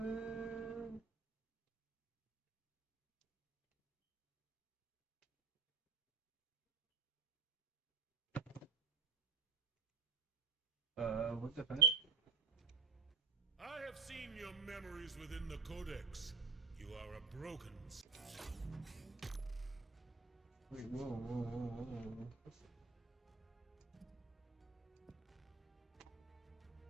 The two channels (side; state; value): left; quieter; 4.9 dB